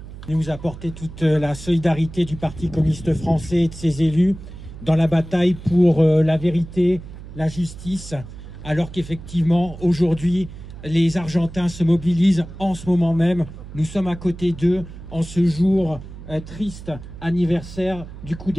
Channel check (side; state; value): right; noise; hum, 14 dB below the sound